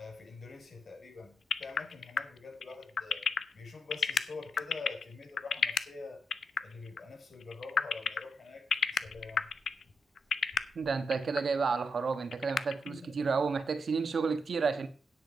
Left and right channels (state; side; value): normal; both; correlation 0.81